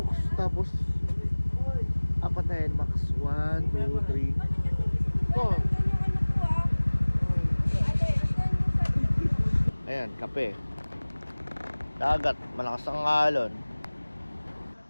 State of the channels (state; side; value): inverted; both; correlation -1.00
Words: Tapos 4 na NMAX. 1, 2, 3 4. Ayan, kape. Dagat, malakas ang alon.